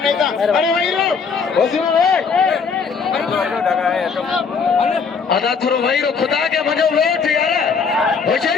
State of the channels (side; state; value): right; quieter; 5.5 dB